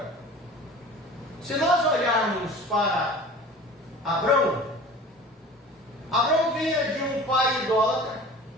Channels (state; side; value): normal; both; correlation 0.41